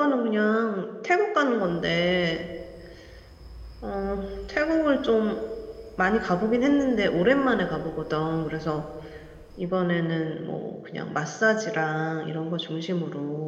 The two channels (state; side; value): identical; both; correlation 1.00